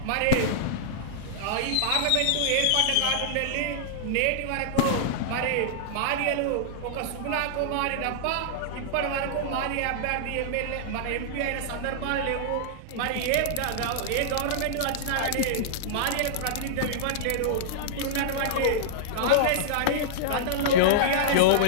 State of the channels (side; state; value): both; different; correlation -0.01